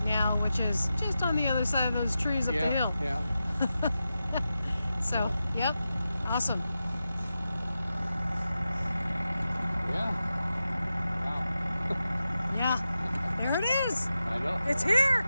now, which is just on the other side of those trees up the hill. Yeah. So, yep. Awesome. Yeah, there it is. I know. It's here.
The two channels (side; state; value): both; inverted; correlation -0.91